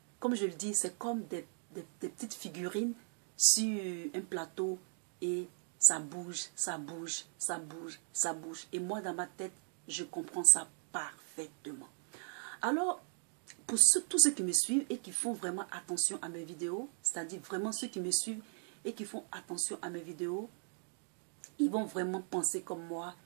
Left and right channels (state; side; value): silent; left; 53 dB below the other